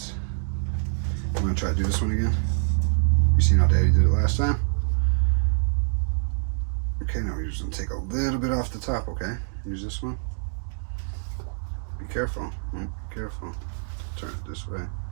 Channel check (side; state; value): left; silent; digital silence